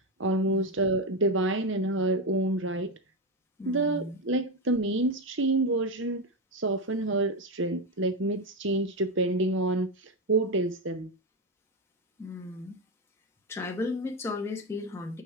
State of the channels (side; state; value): both; normal; correlation 0.11